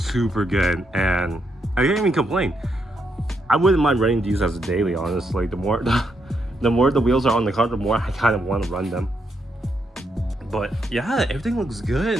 good, and I can't even complain. I wouldn't mind running these as a daily, honestly. The more the wheels are on the car, the more I kind of want to run them. But yeah, everything looks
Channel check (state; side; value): normal; both; correlation 0.79